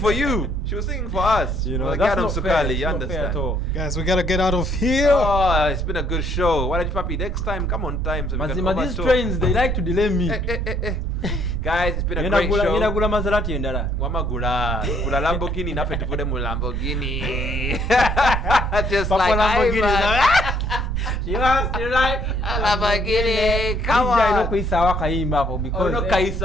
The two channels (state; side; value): noise; right; rumble, 5 dB below the sound